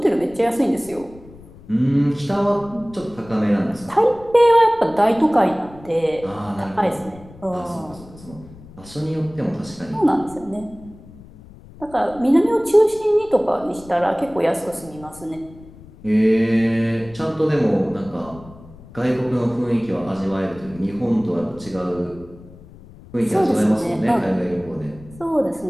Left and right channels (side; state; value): left; noise; rumble, 20 dB below the sound